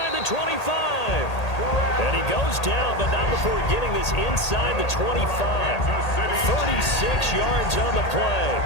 the 25. And he goes down, but not before getting this inside the 25. 36 yards on the play.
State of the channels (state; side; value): late; right; 1.8 ms